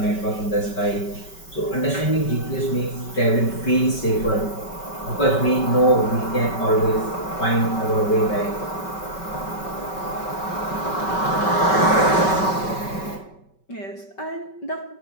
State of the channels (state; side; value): late; right; 5.2 ms